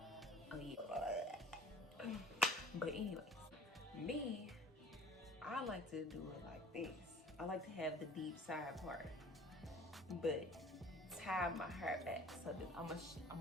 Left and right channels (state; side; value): normal; both; correlation 0.49